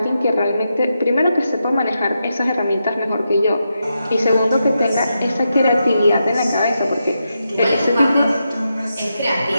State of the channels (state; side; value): inverted; both; correlation -0.86